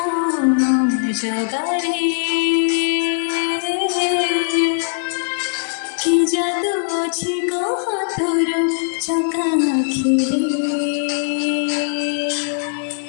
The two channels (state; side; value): silent; right; 59 dB below the other